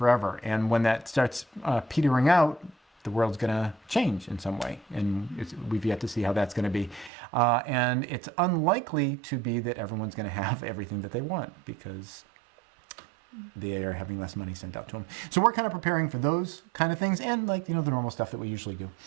And when that starts petering out, the world's going to change in some way. And we've yet to see how that's going to be. And it's unlikely to be that everyone's going to have everything that they want, because they are having less money sent out to them. So we're kind of preparing for those kind of things, and the normal stuff that we usually do.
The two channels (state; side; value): drops out; left; at 7.1 s